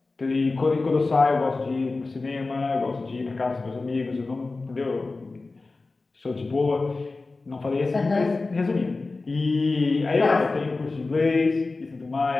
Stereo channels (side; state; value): right; quieter; 3.6 dB